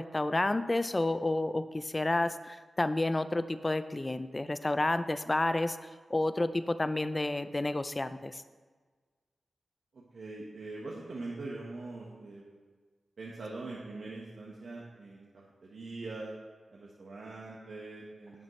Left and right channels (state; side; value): normal; both; correlation 0.98